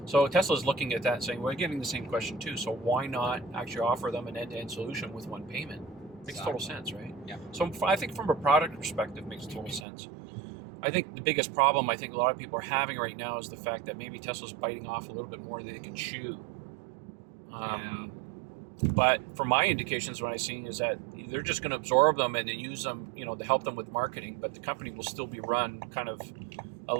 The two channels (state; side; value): drops out; left; at 9.9 s